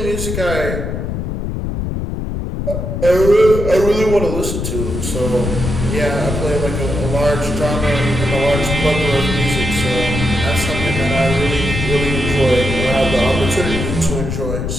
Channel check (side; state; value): left; noise; rumble, 3 dB below the sound